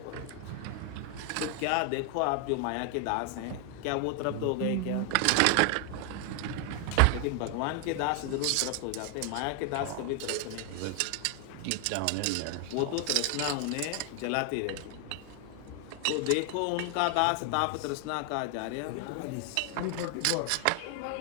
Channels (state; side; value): different; both; correlation 0.00